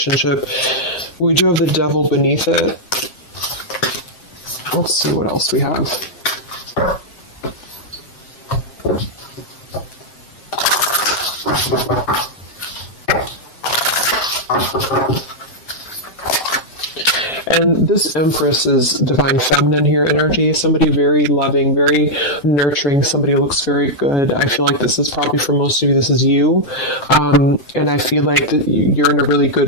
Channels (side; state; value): right; late; 7.6 ms